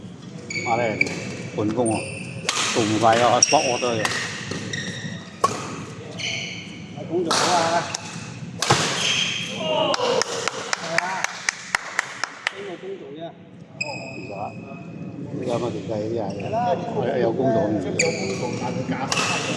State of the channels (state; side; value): identical; both; correlation 1.00